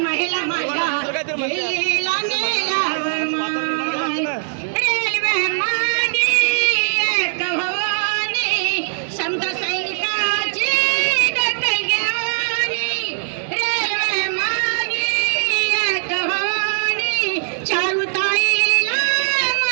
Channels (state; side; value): silent; left; 66 dB below the other